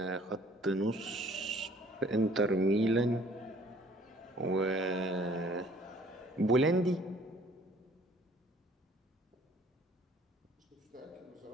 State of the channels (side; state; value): both; normal; correlation 0.56